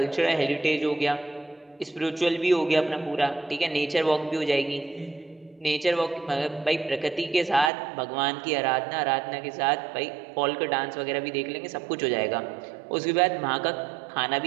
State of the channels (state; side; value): drops out; left; at 7.7 s